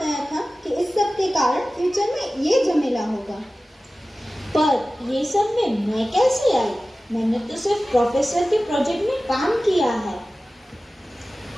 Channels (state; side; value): normal; both; correlation 0.96